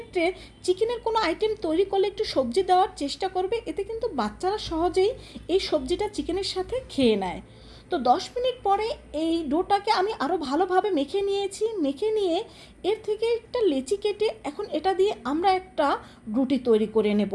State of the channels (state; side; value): identical; both; correlation 1.00